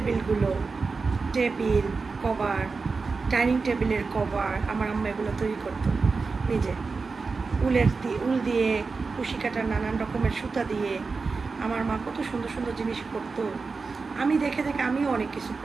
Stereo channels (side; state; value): left; quieter; 4.4 dB